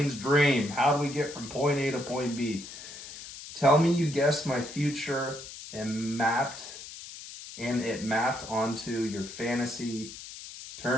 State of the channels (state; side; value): noise; left; hiss, 13 dB below the sound